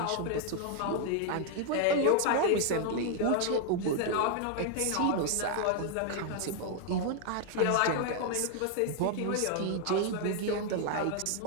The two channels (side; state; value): both; different; correlation 0.00